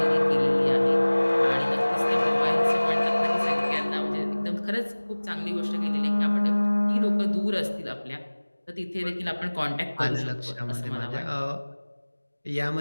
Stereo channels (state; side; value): inverted; both; correlation -1.00